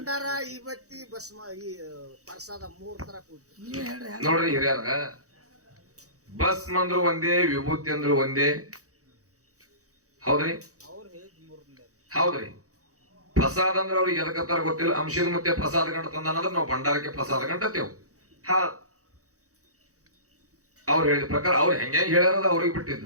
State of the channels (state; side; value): late; left; 0.65 ms